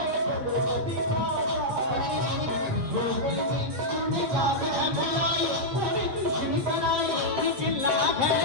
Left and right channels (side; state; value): left; late; 8.4 ms